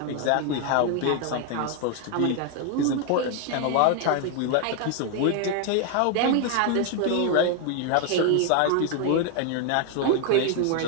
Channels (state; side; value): different; both; correlation 0.01